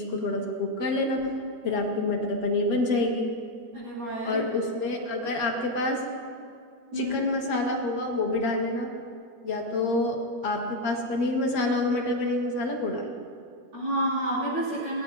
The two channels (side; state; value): left; late; 13 ms